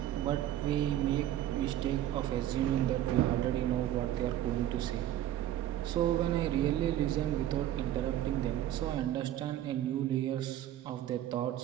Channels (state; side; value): quieter; left; 12.3 dB